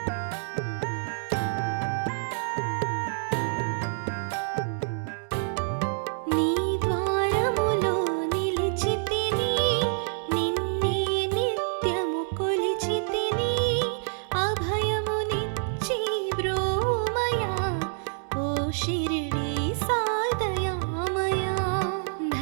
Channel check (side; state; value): left; silent; digital silence